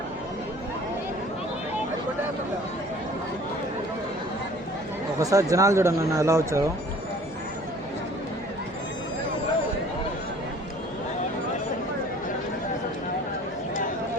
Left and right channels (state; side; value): normal; both; correlation 0.51